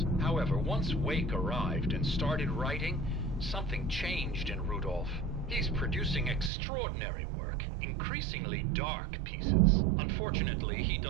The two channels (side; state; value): left; drops out; at 6.5 s